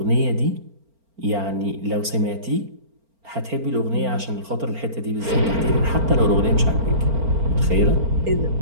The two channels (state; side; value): late; left; 4.4 ms